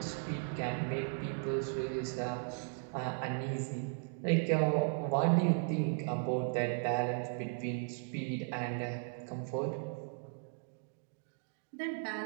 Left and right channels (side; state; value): left; silent; 53 dB below the other